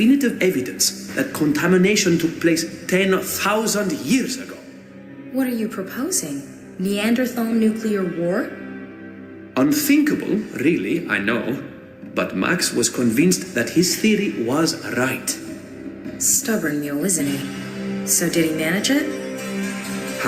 evidence that contamination took place 10,000 years ago. What are you proposing? Neanderthal nuclear war? Unthinkable, really, I know. But Max was convinced that his theory was right. Stubborn mule, isn't he? So did he manage it?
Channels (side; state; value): both; identical; correlation 1.00